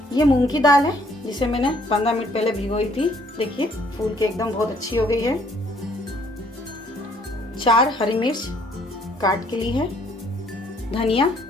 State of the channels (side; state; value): both; normal; correlation 0.63